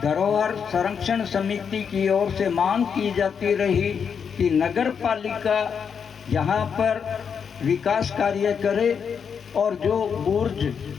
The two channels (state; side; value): quieter; right; 6.8 dB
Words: धरोहर संरक्षण समिति की ओर से मांग की जाती रही कि नगर पालिका यहाँ पर विकास कार्य करे और जो बुर्ज,